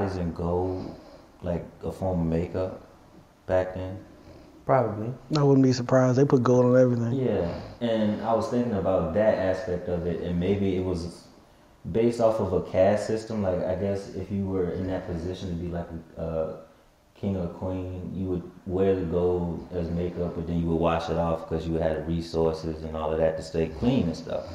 in gold, like a form of makeup back then? Probably. I wouldn't be surprised. They put gold on everything. Yeah, and I was thinking about that aspect of it, and maybe it was based off of a caste system. Like, I guess if you were in that position to be like a king or queen, you would wear the gold as makeup, but then you would wash it off because you had the resources and all of that to stay clean and stuff.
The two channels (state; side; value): identical; both; correlation 1.00